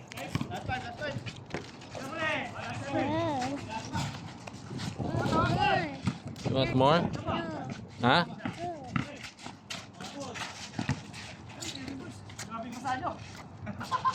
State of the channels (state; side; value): identical; both; correlation 1.00